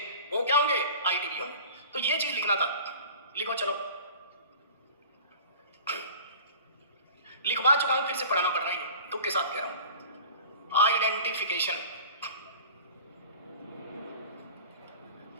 वो क्या होंगे? आईटीवी होंगे। तो ये चीज लिखना था, लिखो चलो। लिखवा चुका हूं, फिर से पढ़ाना पड़ रहा है, दुख के साथ कह रहा हूं।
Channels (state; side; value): inverted; both; correlation -0.41